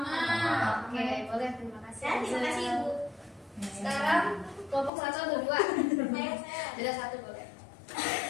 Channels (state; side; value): drops out; right; at 4.9 s